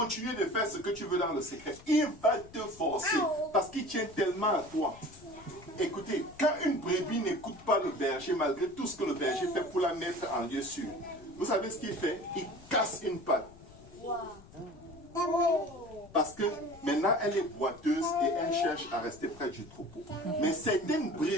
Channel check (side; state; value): left; noise; rumble, 21 dB below the sound